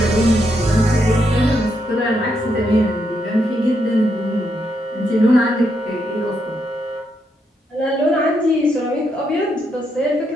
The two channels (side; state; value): both; normal; correlation 0.79